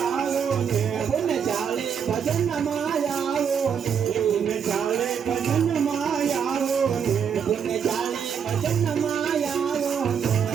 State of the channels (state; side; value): quieter; left; 7.4 dB